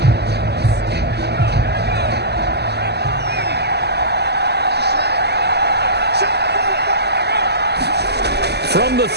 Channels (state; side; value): late; left; 0.48 ms